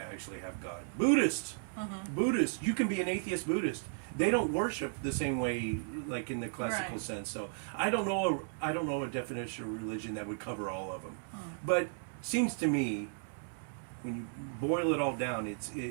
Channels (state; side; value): silent; left; digital silence